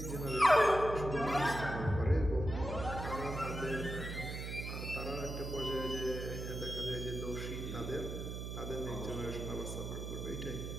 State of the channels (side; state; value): right; noise; hum, 5 dB below the sound